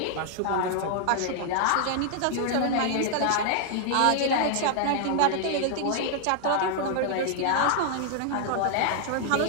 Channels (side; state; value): both; different; correlation 0.00